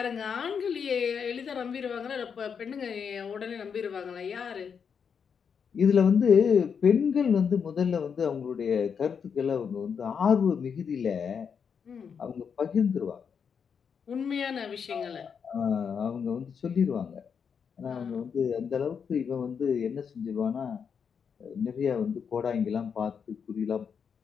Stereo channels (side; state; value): right; quieter; 6.7 dB